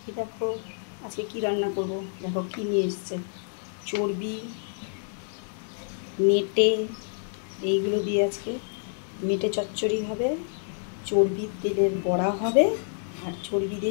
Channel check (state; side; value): silent; right; digital silence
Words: এই দেখো আজকে কি রান্না করব। দেখো কি নিয়ে এসছে, চর্বি, মেটে, এইগুলো দিয়ে আজকে মেটে চচ্চড়ি হবে, চর্বির তেলের বড়া হবে, আর চর্বি